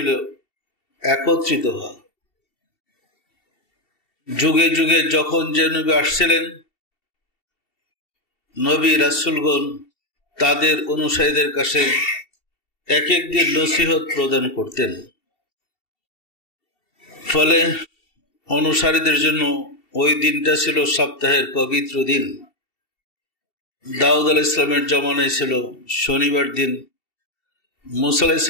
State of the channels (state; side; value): late; right; 2.7 ms